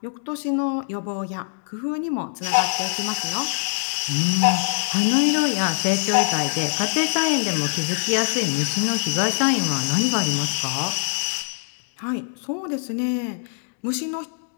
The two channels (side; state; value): right; silent; 62 dB below the other